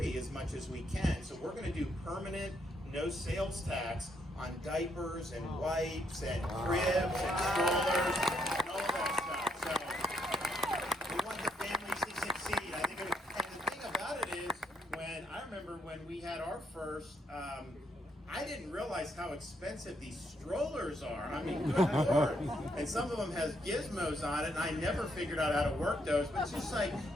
as much as we can. So we're going to do permanent no sales tax on diapers and wipes and cribs and strollers and all that stuff. So we want the families to succeed. I think, and the thing about it is, I remember when we had our first, I didn't realize how expensive these strollers are. I mean, good Lord. And some of them has gizmos on it, and I never figured out how to work those. But it's just like,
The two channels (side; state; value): both; normal; correlation 0.74